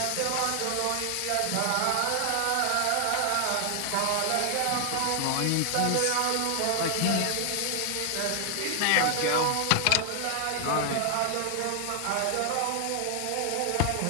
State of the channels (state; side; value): different; both; correlation 0.00